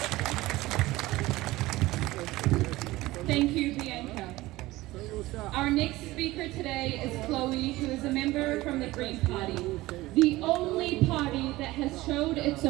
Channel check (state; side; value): quieter; left; 18.6 dB